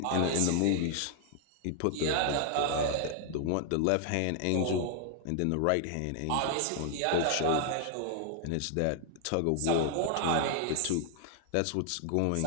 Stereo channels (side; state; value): both; different; correlation 0.00